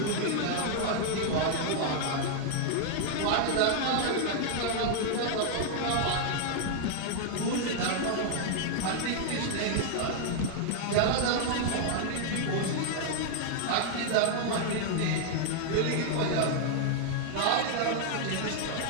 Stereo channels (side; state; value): both; different; correlation 0.00